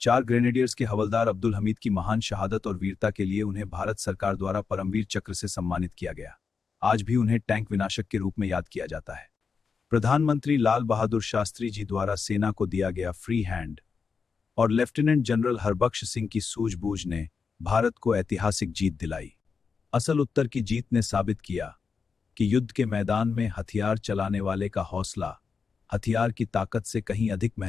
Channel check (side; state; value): right; quieter; 5.5 dB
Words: ग्रेनेडियर्स के हवलदार अब्दुल हमीद की महान शहादत और वीरता के लिए उन्हें भारत सरकार द्वारा परमवीर चक्र से सम्मानित किया गया। आज भी उन्हें टैंक विनाशक के रूप में याद किया जाता है। प्रधानमंत्री लाल बहादुर शास्त्री जी द्वारा सेना को दिया गया फ्री हैंड और लेफ्टिनेंट जनरल हरबख्श सिंह की सूझबूझ ने भारत को ऐतिहासिक जीत दिलाई। असल उत्तर की जीत ने साबित किया कि युद्ध के मैदान में हथियार चलाने वाले का हौसला हथियार की ताकत से कहीं अधिक